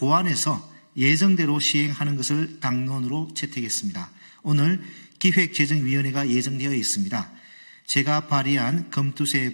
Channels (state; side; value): inverted; both; correlation -1.00